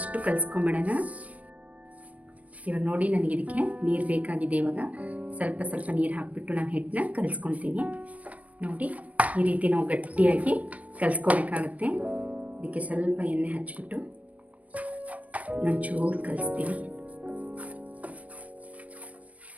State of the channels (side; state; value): left; late; 0.068 ms